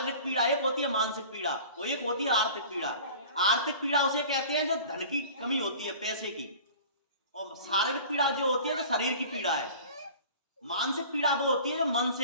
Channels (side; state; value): both; inverted; correlation -0.41